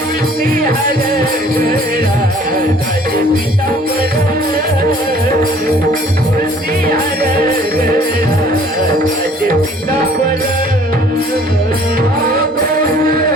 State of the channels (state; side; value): normal; both; correlation 0.55